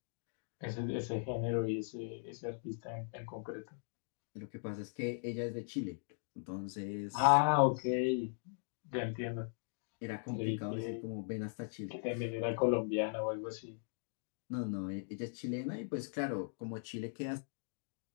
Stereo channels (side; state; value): right; silent; digital silence